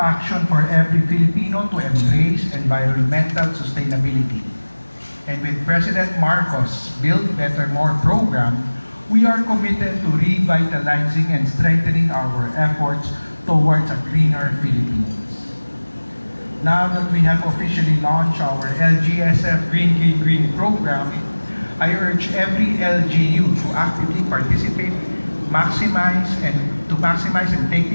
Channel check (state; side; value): inverted; both; correlation -1.00